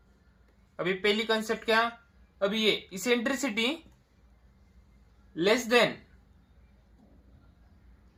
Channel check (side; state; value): both; identical; correlation 1.00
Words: अभी पहली कंसेप्ट क्या, अब ये इसेंट्रिसिटी लेस देन,